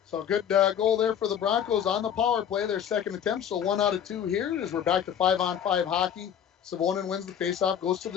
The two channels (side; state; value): right; quieter; 8.9 dB